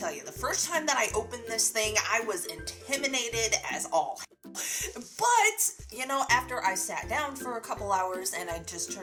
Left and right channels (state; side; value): identical; both; correlation 1.00